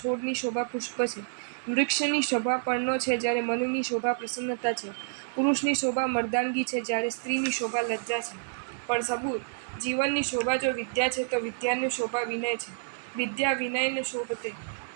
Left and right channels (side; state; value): left; silent; digital silence